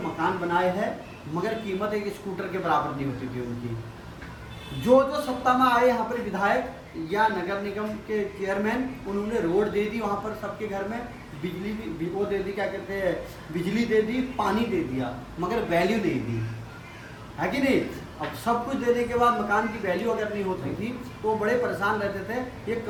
बनाए हैं, मगर कीमत एक स्कूटर के बराबर नहीं होती थी उनकी। जो सत्ता में आए यहाँ पर विधायक या नगर निगम के चेयरमैन, उन्होंने रोड दे दी वहाँ पर सबके घर में, बिजली भी वो दे दी, क्या कहते हैं, बिजली दे दी, पानी दे दिया, मगर वैल्यू नहीं दी, है कि नहीं। अब सब कुछ देने के बाद मकान की वैल्यू अगर नहीं होती थी तो बड़े परेशान रहते थे। ये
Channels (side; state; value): both; identical; correlation 1.00